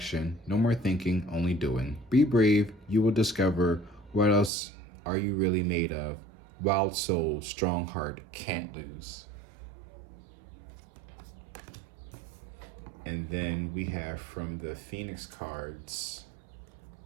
No more thinking, only doing. Be brave. You will discover what else are you really made of. Wild soul, strong heart, can't lose. And then we have from the Phoenix cards,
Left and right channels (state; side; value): drops out; left; at 4.5 s